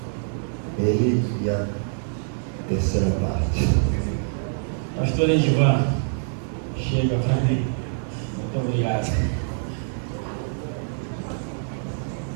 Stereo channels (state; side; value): silent; left; 61 dB below the other